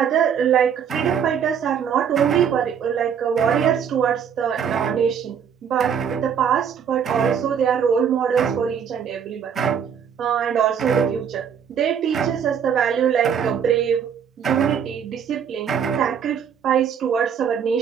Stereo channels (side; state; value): left; quieter; 7.7 dB